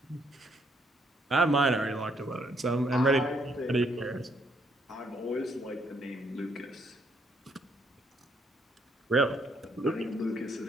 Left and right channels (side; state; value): both; normal; correlation 0.71